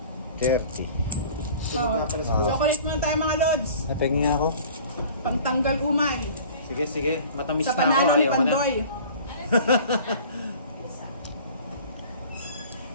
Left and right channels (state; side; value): inverted; both; correlation -0.45